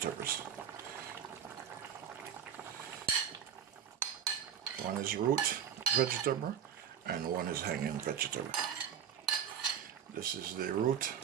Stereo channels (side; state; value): left; quieter; 8.5 dB